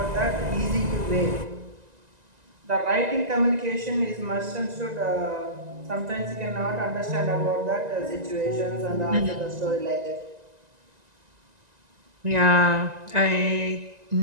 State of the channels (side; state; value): left; late; 1.9 ms